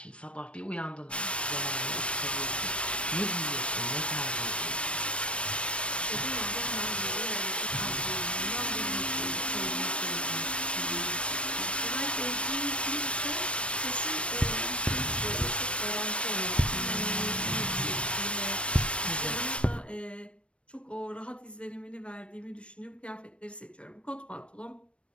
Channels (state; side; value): late; right; 0.060 ms